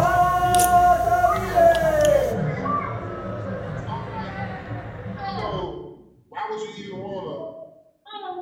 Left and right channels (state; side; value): identical; both; correlation 1.00